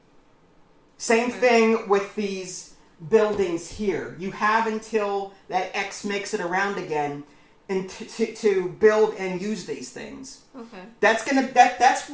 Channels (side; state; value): both; identical; correlation 1.00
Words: Same thing with these buildings here. You have until that X makes it around again and to build and use these things. Okay. That's